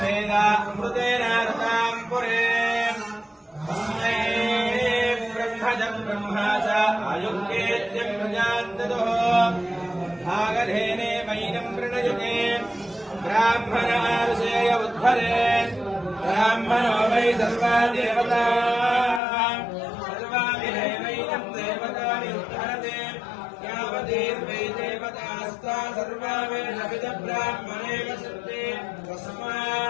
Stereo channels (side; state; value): right; drops out; at 19.2 s